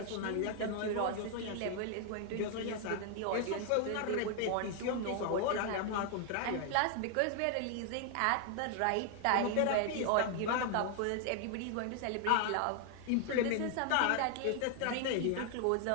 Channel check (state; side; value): different; both; correlation 0.00